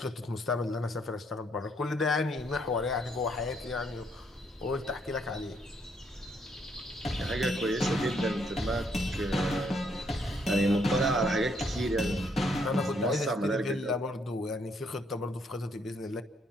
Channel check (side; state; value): both; normal; correlation 0.71